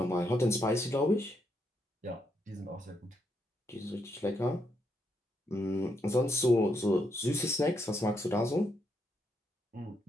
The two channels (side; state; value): both; normal; correlation 0.78